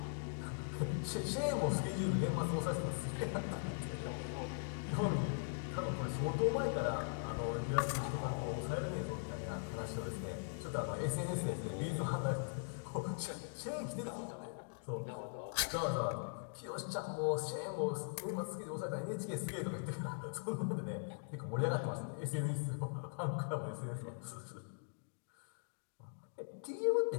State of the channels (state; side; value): silent; right; digital silence